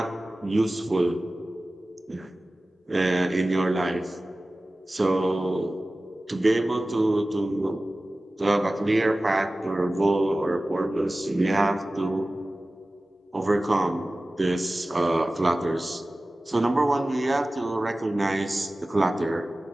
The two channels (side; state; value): both; normal; correlation 0.97